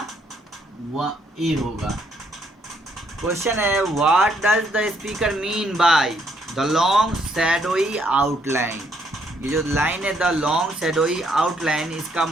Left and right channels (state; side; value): normal; both; correlation 0.70